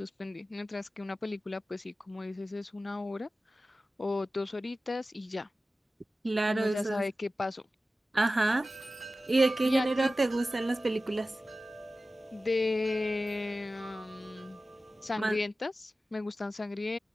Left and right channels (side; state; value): both; normal; correlation 0.95